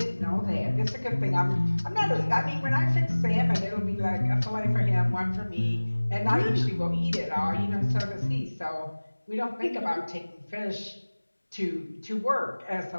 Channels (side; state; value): both; inverted; correlation -1.00